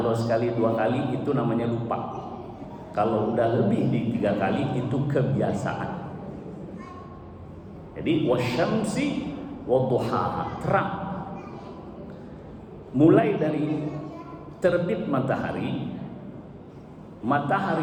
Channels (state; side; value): identical; both; correlation 1.00